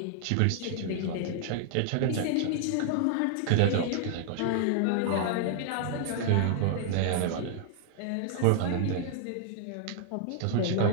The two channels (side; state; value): both; different; correlation 0.00